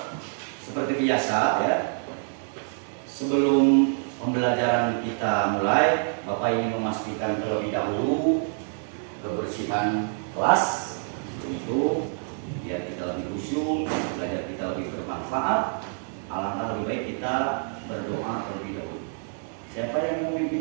Seperti biasa ya, sebelum pembelajaran kita mulai, Bapak ingin memastikan terlebih dahulu kebersihan kelas, itu biar kita lebih khusyuk, belajar kita lebih bermanfaat. Alangkah lebih baik kita berdoa terlebih dahulu. Siapa yang mau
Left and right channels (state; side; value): silent; left; 60 dB below the other